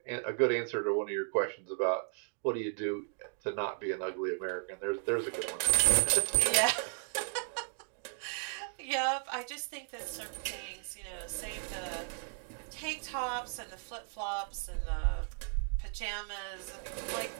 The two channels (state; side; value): silent; left; 54 dB below the other